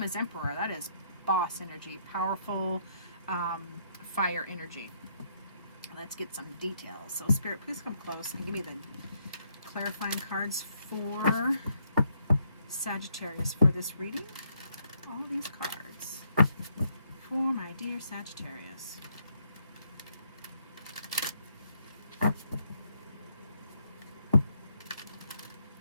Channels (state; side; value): inverted; both; correlation -0.73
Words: is Emperor. That is boss energy, powerful fire energy. Let's get some details. So Spirit, please come close and give me the clarifying cards for Sagittarius for this reading. All these cards for my dear Sagittarius.